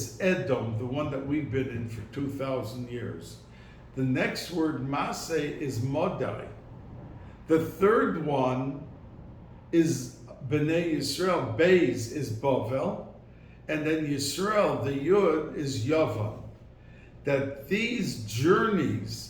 Edom, the one that we've been in for 2,000 years. The next word, Massei, is Modai. The third one is B'nai Yisrael. Beis is Bavel. And then Yisrael, the Yud, is Yavan. That these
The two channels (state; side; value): identical; both; correlation 1.00